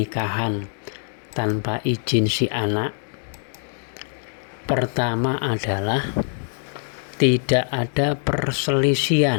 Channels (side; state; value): right; silent; 57 dB below the other